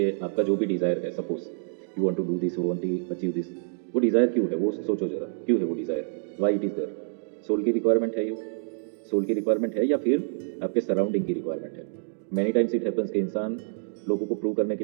आपका जो भी डिज़ायर है, suppose you want to do this, you want to achieve this, वो डिज़ायर क्यों है, वो सोचो जरा, क्यों है वो desire, why it is there. Soul की रिक्वायरमेंट है, ये सोल की रिक्वायरमेंट है या फिर आपके सराउंडिंग की रिक्वायरमेंट है। मेनी टाइम्स इट हैपेंस कि इंसान लोगों को प्रूव करने के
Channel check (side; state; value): left; silent; digital silence